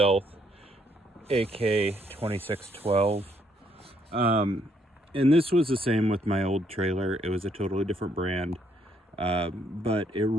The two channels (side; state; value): both; normal; correlation 0.70